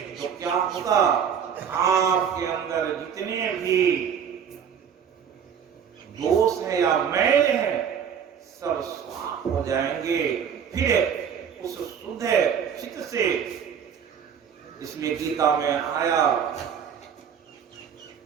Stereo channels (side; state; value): left; quieter; 7.8 dB